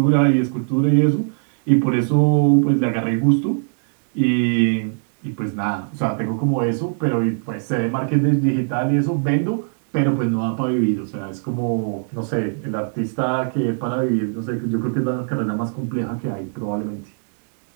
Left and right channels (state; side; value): silent; left; digital silence